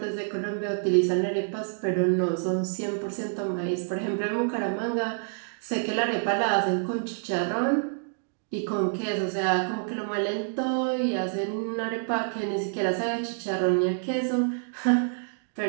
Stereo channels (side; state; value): left; silent; digital silence